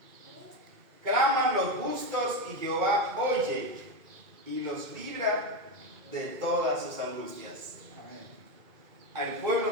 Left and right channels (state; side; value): late; left; 2.3 ms